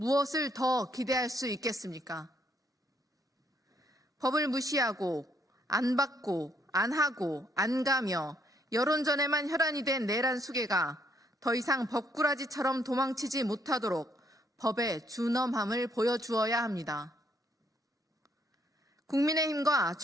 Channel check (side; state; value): both; normal; correlation 0.71